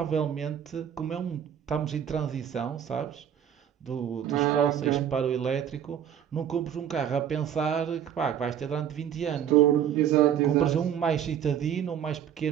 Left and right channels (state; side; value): quieter; left; 9.3 dB